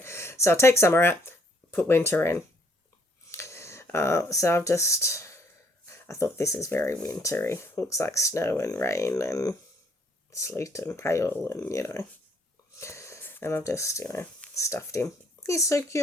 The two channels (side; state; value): both; normal; correlation 0.65